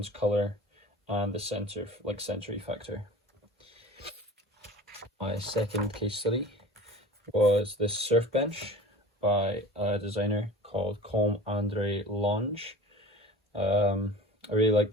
colour, and the sensory factor. My second case study was this surf bench by a designer called Com Andre Lange. I really like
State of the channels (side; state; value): both; normal; correlation 0.39